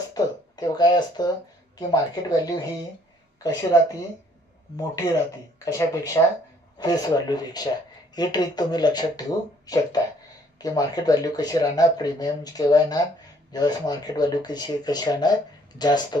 तेव्हा काय असतं की मार्केट व्हॅल्यू ही कशी राहते मोठी राहते. कशापेक्षा? फेस व्हॅल्यूपेक्षा. ही ट्रिक तुम्ही लक्षात ठेवू शकता की मार्केट व्हॅल्यू कशी राहणार, प्रीमियम केव्हा येणार, ज्यावेळेस मार्केट व्हॅल्यू कशी राहणार, जास्त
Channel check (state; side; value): normal; both; correlation 0.62